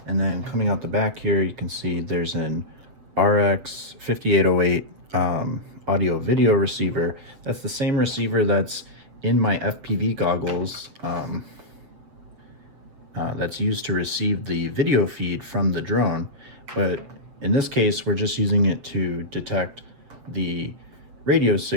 and then coming out the back here you can see there's an RX 5808 audio video receiver. That's the same receiver that's in my FPV goggles, that's used to receive the video feed from the drone, but in this case we're just using it to detect the radio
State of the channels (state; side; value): late; left; 7.6 ms